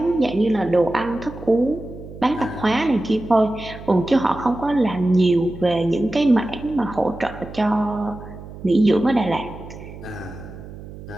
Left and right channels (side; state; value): right; noise; hum, 14 dB below the sound